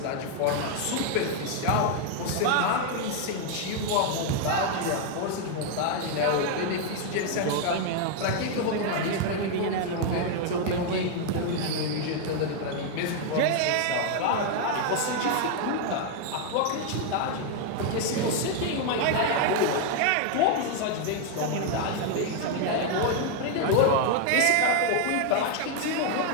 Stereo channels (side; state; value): both; different; correlation 0.00